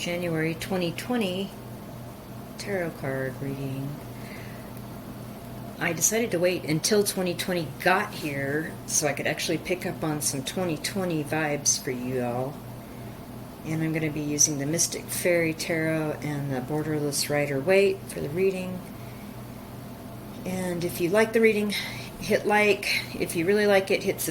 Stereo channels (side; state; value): both; identical; correlation 1.00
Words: 2020 tarot card reading. I decided to wait until 2020 got here so I could actually pick up on some 2020 vibes for you all. And I'm going to be using the Mystic Fairy Tarot and the Borderless Rider-Waite for the reading. And if you like the reading, hit like. If you really like it, hit